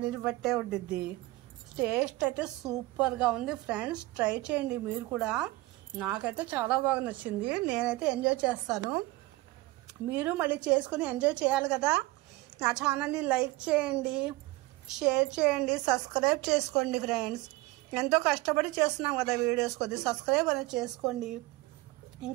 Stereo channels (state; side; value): quieter; left; 19.6 dB